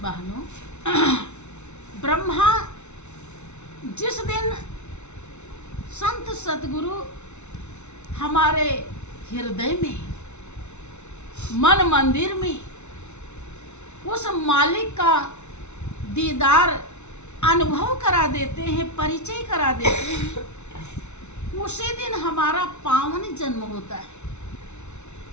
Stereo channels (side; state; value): right; late; 0.82 ms